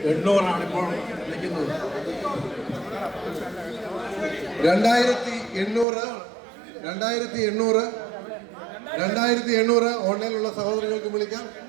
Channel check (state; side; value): drops out; left; at 5.9 s